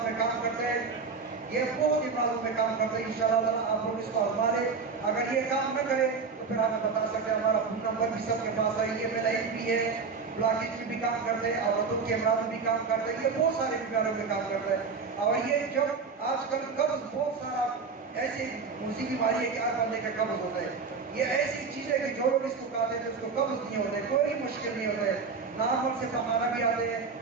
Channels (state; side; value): quieter; left; 5.0 dB